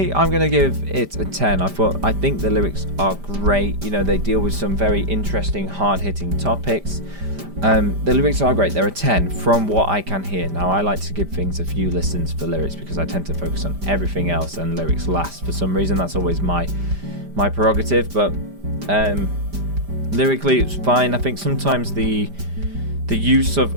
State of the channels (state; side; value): late; left; 5.0 ms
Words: I'm going to give it a 10. I think the lyrics are great. You know, they deal with some very interesting, hard-hitting topics. The lyrics are great. They're a 10 from what I can hear. Now, I like to give things a few listens for lyrics because I tend to focus on everything else and lyrics last. For some reason, that's always my prerogative. But lyrically, it's fine. I think sometimes the